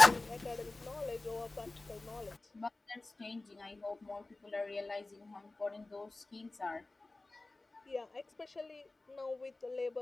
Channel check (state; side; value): quieter; right; 3.1 dB